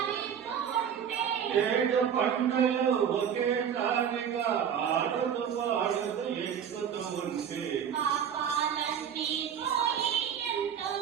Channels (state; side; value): quieter; left; 8.2 dB